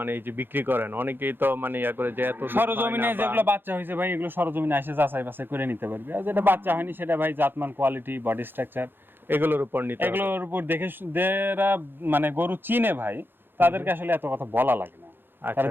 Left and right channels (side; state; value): left; late; 0.10 ms